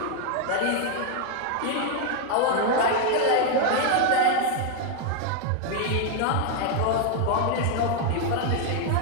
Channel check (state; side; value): different; both; correlation 0.00